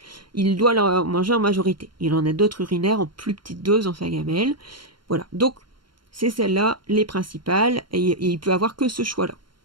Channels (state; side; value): late; left; 0.72 ms